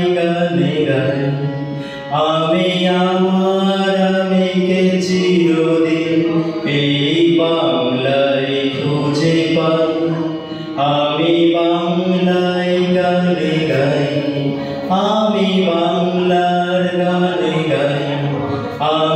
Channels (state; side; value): identical; both; correlation 1.00